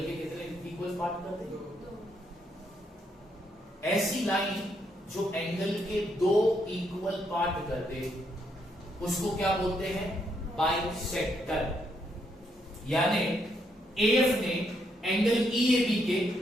के कितने इक्वल पार्ट कर दे? ऐसी लाइन जो एंगल के दो इक्वल पार्ट कर दे, उसको क्या बोलते हैं? बाइसेक्टर. यानी एएफ ने एंगल ईएबी के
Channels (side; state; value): both; normal; correlation 0.76